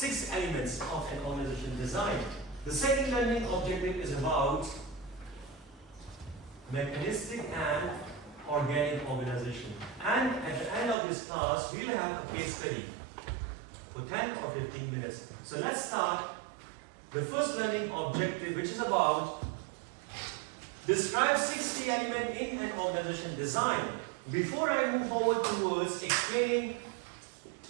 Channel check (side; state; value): left; drops out; at 11.0 s